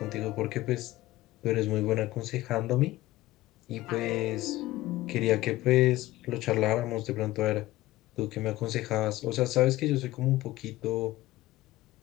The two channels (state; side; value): quieter; right; 17.1 dB